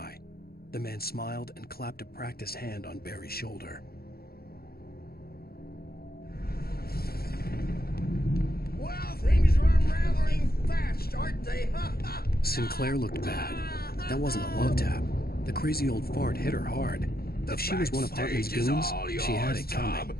The man smiled and clapped a practiced hand on Barry's shoulder. Well, things are unraveling fast, aren't they? Sinclair looked bad. That wasn't a love tap. The crazy old fart hit her hard. If she was one of Hartman's goons, she had it coming.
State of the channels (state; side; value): late; right; 0.44 ms